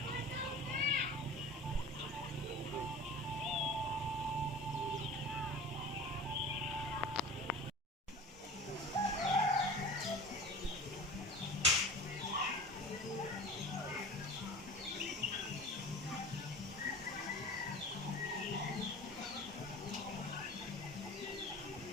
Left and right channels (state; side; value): normal; both; correlation 0.38